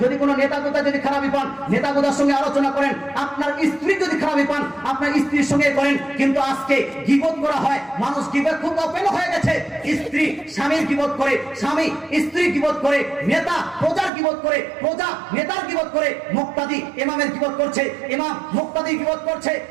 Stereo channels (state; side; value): drops out; left; at 14.1 s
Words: যদি কোনো নেতা গোতা যদি খারাপই পান নেতা গোতার সঙ্গে আলোচনা করেন, আপনার স্ত্রী যদি খারাপই পান আপনার স্ত্রীর সঙ্গে করেন। কিন্তু আজকে গীবত করা হয়, মানুষ গীবত খুব ওপেন হয়ে গেছে। স্ত্রী স্বামীর গীবত করে, স্বামী স্ত্রীর গীবত করে, নেতা প্রজার গীবত করে, প্রজা নেতার গীবত করে, মুক্তাদি ইমামের গীবত করছে, ইমাম মুক্তাদির গীবত করছে,